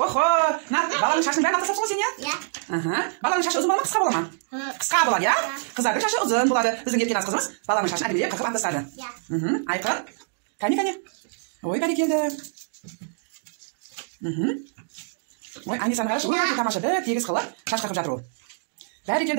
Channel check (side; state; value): left; silent; digital silence